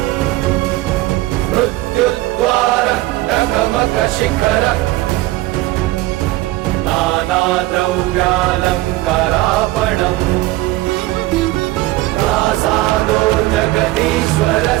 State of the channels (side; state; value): left; quieter; 18.3 dB